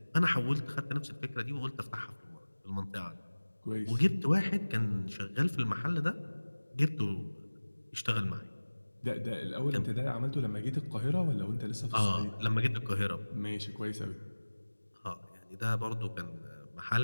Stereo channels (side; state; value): both; inverted; correlation -1.00